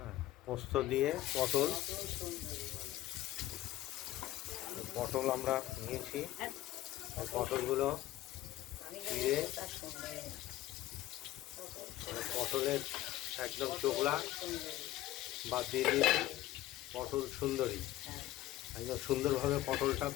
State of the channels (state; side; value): quieter; right; 15.1 dB